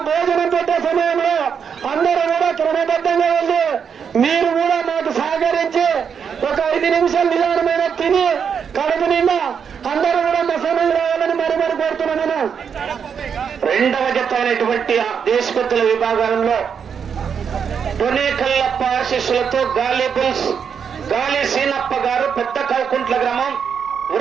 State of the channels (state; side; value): quieter; left; 7.0 dB